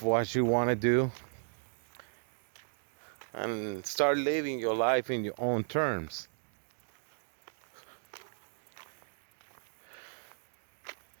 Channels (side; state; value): left; silent; digital silence